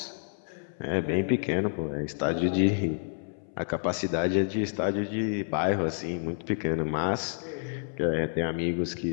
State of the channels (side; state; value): right; silent; 58 dB below the other